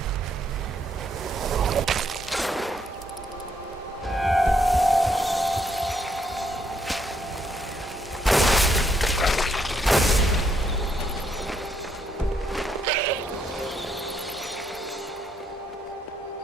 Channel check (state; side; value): normal; both; correlation 0.74